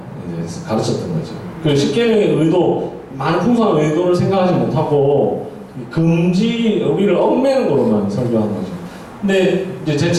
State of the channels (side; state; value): both; identical; correlation 1.00